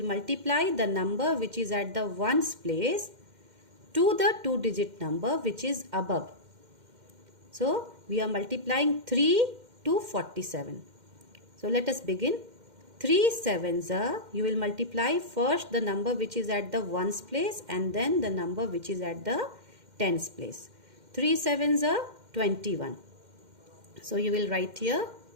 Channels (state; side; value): late; left; 2.1 ms